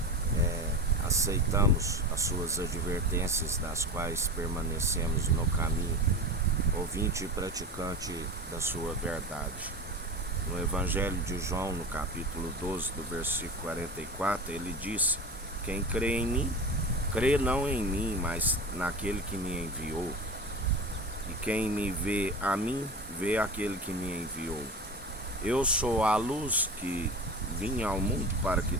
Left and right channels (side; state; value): both; normal; correlation 0.29